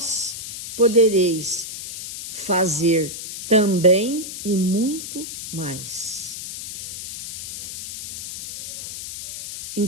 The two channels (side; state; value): left; noise; hiss, 9 dB below the sound